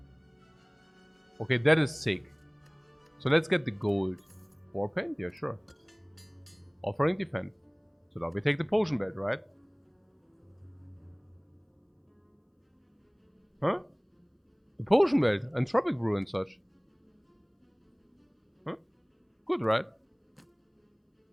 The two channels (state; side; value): identical; both; correlation 1.00